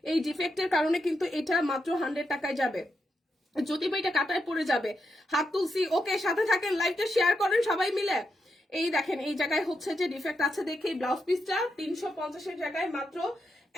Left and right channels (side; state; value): both; normal; correlation 0.84